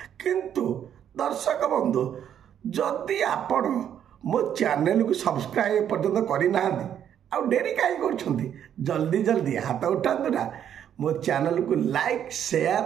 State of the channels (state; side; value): quieter; left; 9.5 dB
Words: किंतु दर्शक बंधु जदि आपण मो चैनल को सब्सक्राइब पर्यंत करना आउ डेरी कहीं कर जल्दी जल्दी हाथ उठातु ना मो चैनल को लाइक